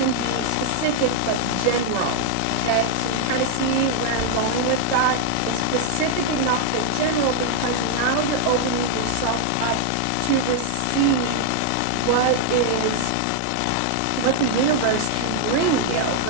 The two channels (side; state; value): both; different; correlation 0.00